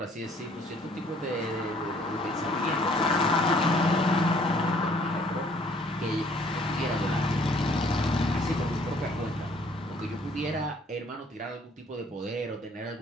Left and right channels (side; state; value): both; normal; correlation 0.60